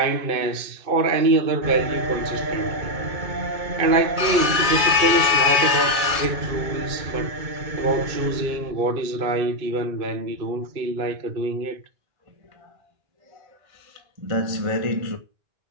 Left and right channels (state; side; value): late; left; 1.8 ms